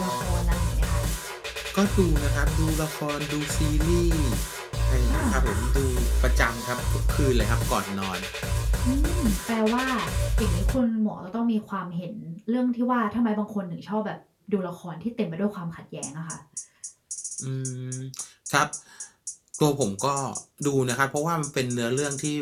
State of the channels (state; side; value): identical; both; correlation 1.00